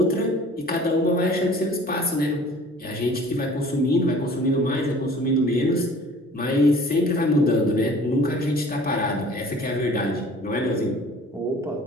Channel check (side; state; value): both; normal; correlation 0.48